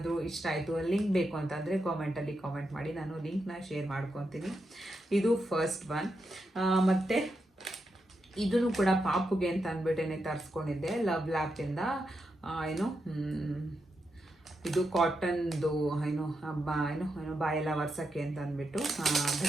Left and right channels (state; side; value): normal; both; correlation 0.85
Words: ಇಷ್ಟ ಆಯಿತು, ಲಿಂಕ್ ಬೇಕು ಅಂತಂದರೆ ಕಾಮೆಂಟಲ್ಲಿ ಕಾಮೆಂಟ್ ಮಾಡಿ, ನಾನು ಲಿಂಕ್ನ ಶೇರ್ ಮಾಡ್ಕೊತೀನಿ. ಇದು ಫಸ್ಟ್ ಒನ್. ಮತ್ತು ಇದನ್ನು ಕೂಡ ಪಾಪುಗೆ ಅಂತ ಅಂದ್ಬಿಟ್ಟೇನೆ ತರಿಸ್ಕೊಂಡಿದ್ದೆ ಲವ್ ಲ್ಯಾಪಿಂದ. ಇದು ಕಾಟನ್ದು ಬಾಯೆಲ್ಲ ಒರ್ಸೋಕ್ಕೆ ಅಂತ ಅಂದ್ಬಿಟ್ಟು